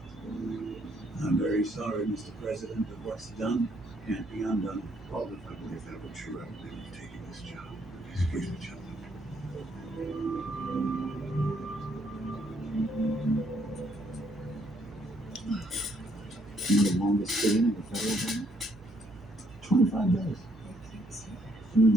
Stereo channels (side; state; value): both; normal; correlation 0.70